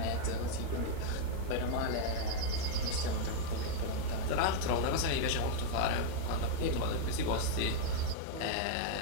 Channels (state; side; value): different; both; correlation 0.00